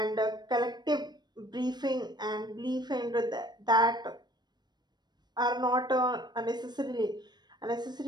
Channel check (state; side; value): late; left; 0.21 ms